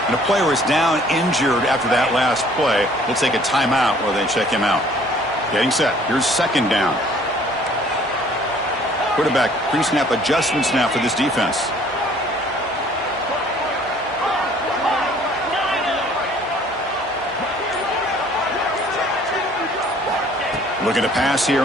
And a player is down injured after that last play. We'll take a timeout while they check him out. Getting set. Here's 2nd down. Quarterback pre-snap adjustments now for this defense. Looking to pass here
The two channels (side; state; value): both; normal; correlation 0.56